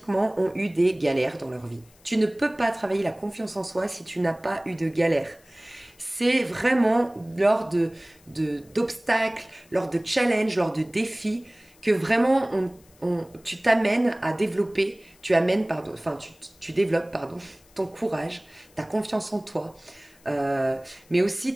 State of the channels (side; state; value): left; noise; hiss, 29 dB below the sound